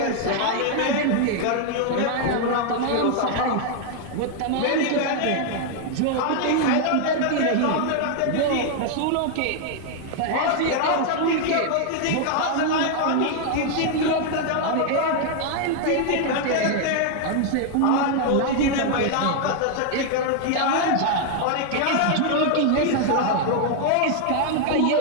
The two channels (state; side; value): different; both; correlation 0.00